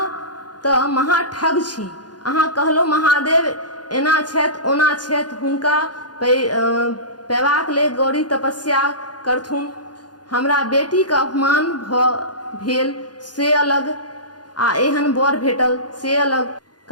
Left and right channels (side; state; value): right; late; 0.69 ms